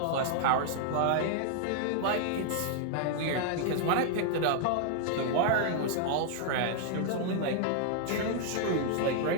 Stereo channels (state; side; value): different; both; correlation -0.01